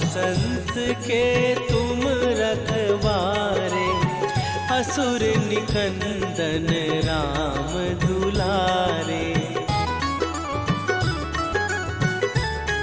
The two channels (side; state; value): both; identical; correlation 1.00